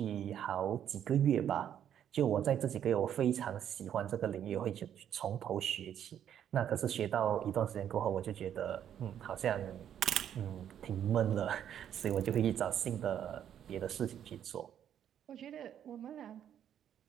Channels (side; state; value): left; quieter; 9.8 dB